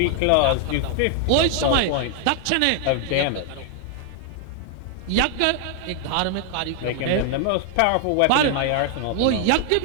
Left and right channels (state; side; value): different; both; correlation 0.00